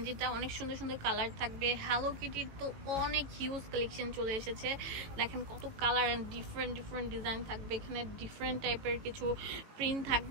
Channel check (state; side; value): late; left; 18 ms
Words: অনেক সুন্দর সুন্দর কালার থাকবে। হ্যালো কিটির তো অনেক হিউজ কালেকশন চলে এসেছে, দেখেন কত colour and different different design থাকবে। এখানে ডিফারেন্ট টাইপের কিছু প্রিন্ট